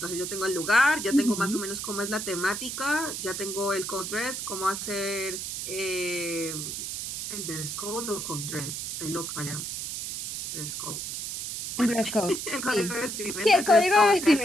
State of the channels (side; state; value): right; noise; hiss, 5 dB below the sound